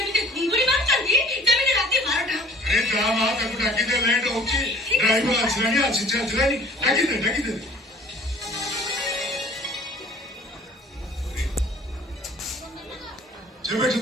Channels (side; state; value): both; normal; correlation 0.50